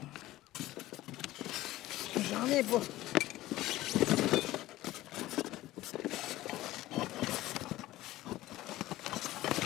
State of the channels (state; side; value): quieter; right; 16.3 dB